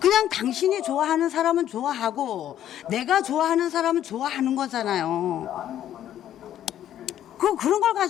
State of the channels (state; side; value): quieter; right; 11.3 dB